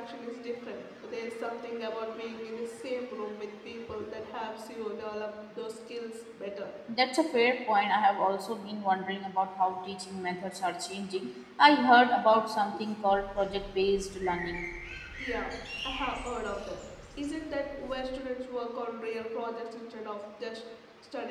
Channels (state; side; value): identical; both; correlation 1.00